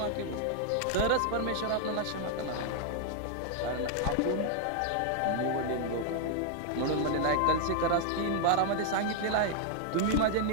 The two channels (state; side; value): different; both; correlation 0.00